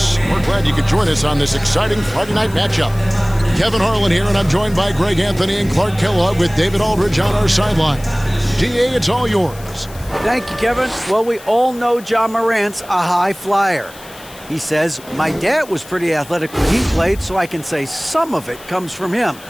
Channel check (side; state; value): left; noise; hiss, 20 dB below the sound